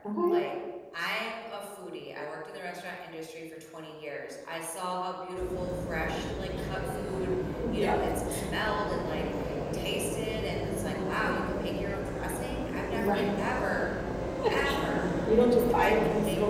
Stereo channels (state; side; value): identical; both; correlation 1.00